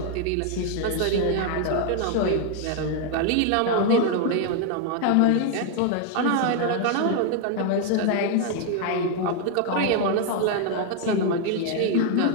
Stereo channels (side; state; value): both; different; correlation 0.00